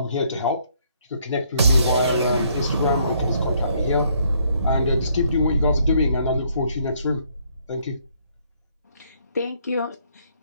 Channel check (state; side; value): inverted; both; correlation -0.68